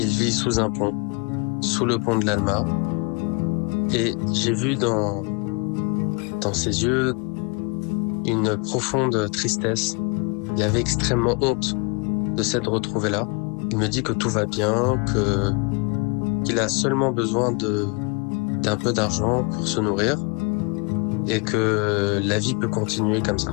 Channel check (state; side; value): quieter; right; 32.5 dB